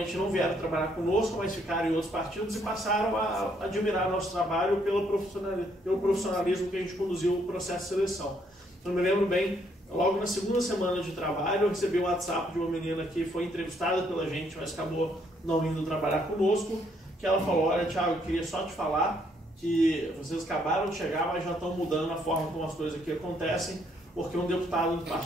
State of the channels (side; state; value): both; normal; correlation 0.70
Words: não vieram trabalhar conosco, mas ficaram em outros partidos e passaram a admirar nosso trabalho pelo profissionalismo que a gente conduziu o processo de seleção. Eu me lembro bem, logo na segunda semana de trabalho, eu recebi um WhatsApp de uma menina que foi entrevistada pela gente, mas acabou não indo trabalhar conosco, que ela falou: olha, Thiago, eu queria só te falar que vocês acabaram de chegar, mas já estão mudando a forma como as coisas aqui acontecem, porque um deputado do